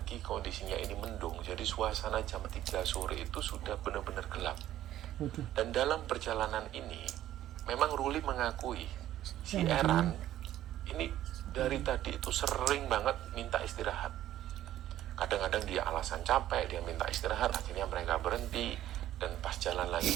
kondisinya ini mendung, jadi suasana jam 3 sore itu sudah benar-benar gelap. Dan dalam perjalanan ini memang Ruli mengakui si Eran ini dari tadi itu sering banget minta istirahat. Kadang-kadang dia alasan capek, dia minta istirahat, akhirnya mereka berhenti. Dan pas jalan lagi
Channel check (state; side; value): quieter; left; 12.9 dB